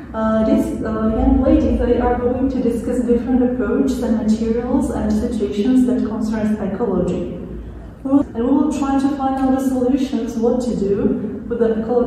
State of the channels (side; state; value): both; identical; correlation 1.00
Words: These young ladies, they are going to discuss different approaches and materials and situations that concerns ecology. And we will try to find out the solutions, what to do with the